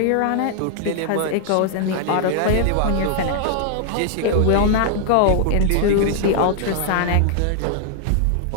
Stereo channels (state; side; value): different; both; correlation 0.00